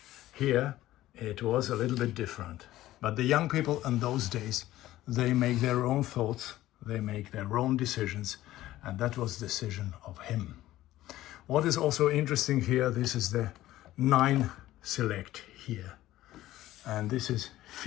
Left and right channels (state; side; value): quieter; right; 15.1 dB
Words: Here it was a little bit different. But the young people in those days, they make their own thoughts, they make their own decisions, and that was the decision of him. What is also interesting here, this is the 9 select here, and this is